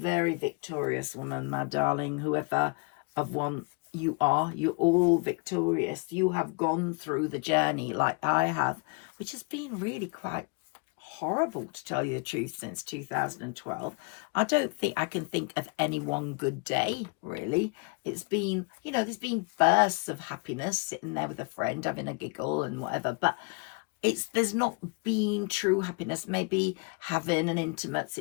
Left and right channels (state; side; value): quieter; right; 31.4 dB